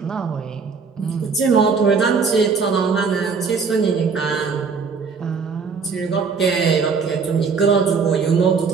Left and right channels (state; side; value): quieter; left; 5.3 dB